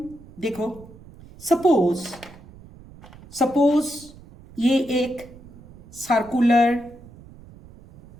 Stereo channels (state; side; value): noise; right; rumble, 21 dB below the sound